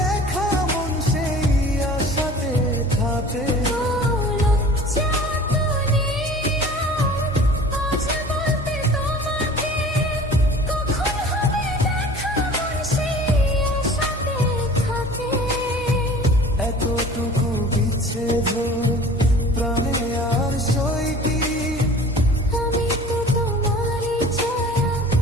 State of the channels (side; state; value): both; normal; correlation 0.44